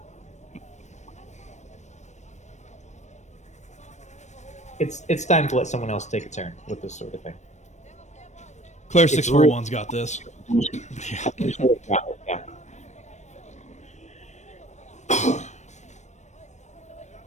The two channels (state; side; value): late; right; 0.34 ms